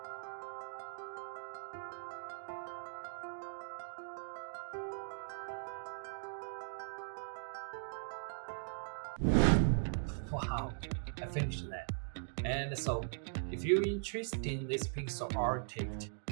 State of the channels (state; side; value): silent; left; digital silence